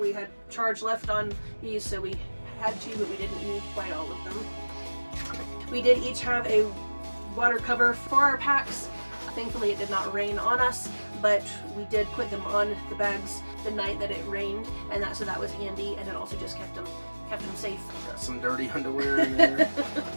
had charge left on these, so we had to, but we didn't need quite all of them. We did each have a water cover for our packs. Thankfully it did not rain on us, but we did put them on the bags the night that it rained, and so that was handy, and it also just kept them safe. Got some dirty underwear in there.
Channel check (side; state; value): both; inverted; correlation -1.00